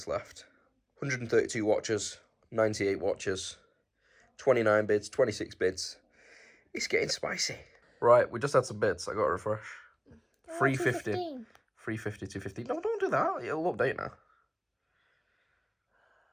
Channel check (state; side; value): identical; both; correlation 1.00